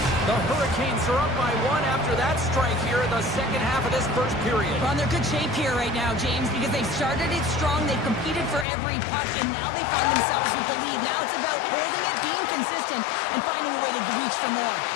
The Hurricanes are up by one after that strike here in the second half of this first period. Well, they're good shape here right now, James, because they've started it strong, they've competed for every puck, and now they find themselves with the lead. Now it's about holding it, being consistent, and finding a way to reach for more.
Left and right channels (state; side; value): drops out; right; at 8.7 s